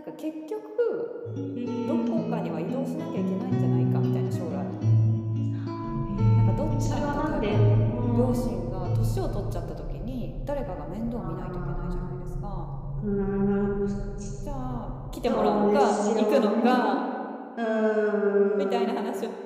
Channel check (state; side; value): identical; both; correlation 1.00